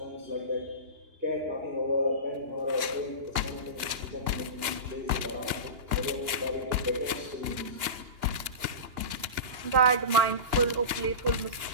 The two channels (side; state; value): left; late; 2.8 ms